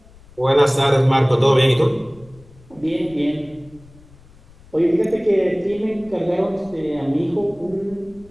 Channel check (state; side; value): noise; left; rumble, 25 dB below the sound